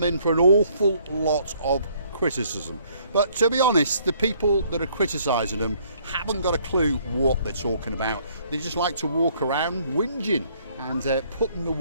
in for an awful lot of criticism. But to be honest, the people that are criticising them haven't got a clue what they're talking about. They just like to walk around whinging and putting the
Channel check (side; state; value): both; inverted; correlation -0.63